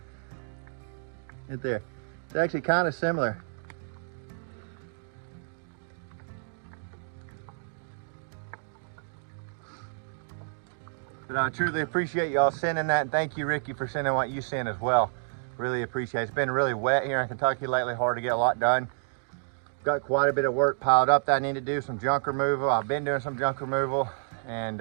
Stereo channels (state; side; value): silent; left; digital silence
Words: Right there. It's actually kind of similar. But I truly appreciate y'all sending that, and thank you, Ricky, for sending what you sent as well. Really appreciate it. It's been really wet here in Kentucky lately, hard to get a lot done. Got quite a bit of work piled up that I need to do, some junk removal. I've been doing some junk removal,